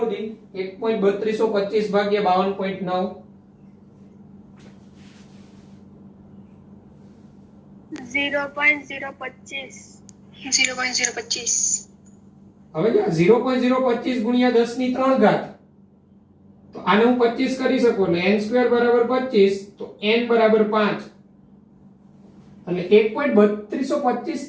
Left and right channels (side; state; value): both; identical; correlation 1.00